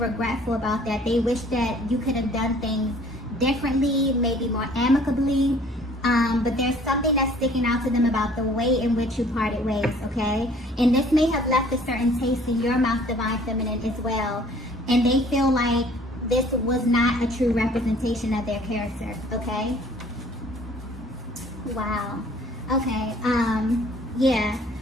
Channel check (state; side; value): normal; both; correlation 0.55